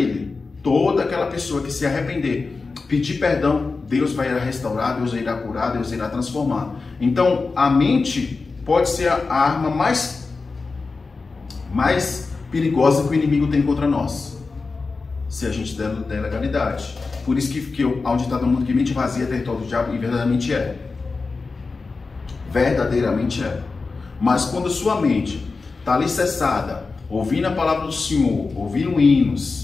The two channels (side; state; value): right; quieter; 4.1 dB